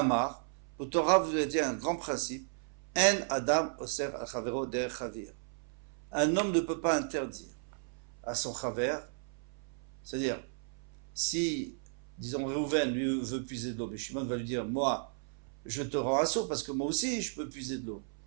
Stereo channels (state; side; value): silent; left; 55 dB below the other